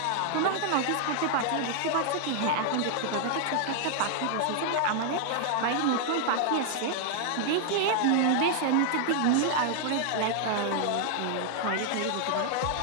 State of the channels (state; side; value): different; both; correlation 0.00